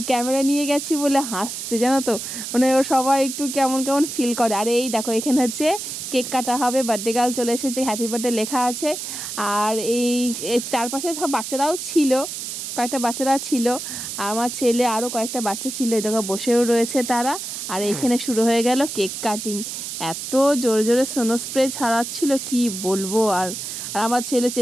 ক্যামেরা নিয়ে গেছি বলে হাসছে, জানো তো, মানে ও সবাই একটু কেমন কেমন ফিল করে। আর এই দেখো এখানে হচ্ছে কেক কাটা হবে, বার্থডে গার্ল চলে এসেছে, হ্যাপি বার্থডে লেখা আছে। আর এই চারপাশে সব বাচ্চারাও ছিল, কয়েকটা বাচ্চারা ছিল, আর আমার ছেলে আরও কয়েকটা বাচ্চা ছিল, এই দেখো বসেও রয়েছে তারা। আর এইখানে শুরু হয়ে গেল কেক কাটিং। এত জোরে জোরে সোনো স্প্রে ছাড়াচ্ছিল কি বলবো। আর আমার ছেলে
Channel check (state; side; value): noise; right; hiss, 6 dB below the sound